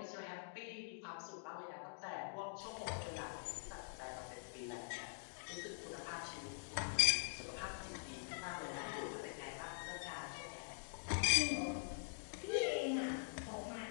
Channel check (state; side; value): silent; right; digital silence